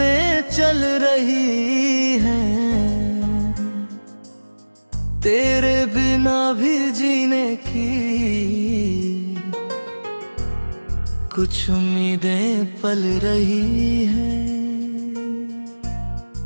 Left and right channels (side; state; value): both; inverted; correlation -1.00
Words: चल रही हैं, तेरे बिना भी जीने की कुछ उम्मीदें पल रही हैं।